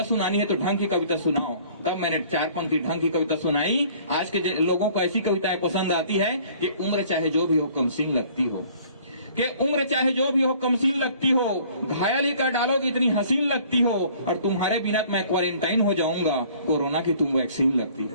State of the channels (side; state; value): both; inverted; correlation -0.54